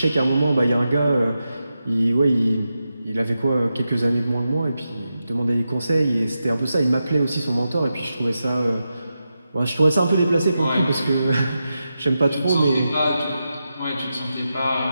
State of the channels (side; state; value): both; inverted; correlation -0.89